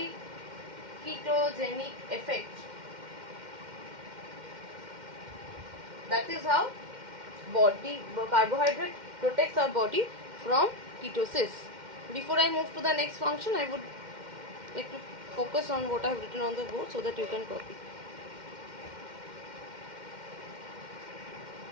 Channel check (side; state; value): left; late; 2.1 ms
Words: effect. That is how carbohydrate protects our body from ketosis. Before I move to the next function, I would like to focus on what I have written on the board so that you can copy.